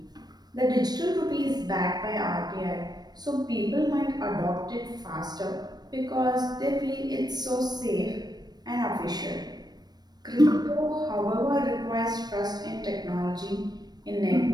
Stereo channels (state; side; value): late; left; 0.19 ms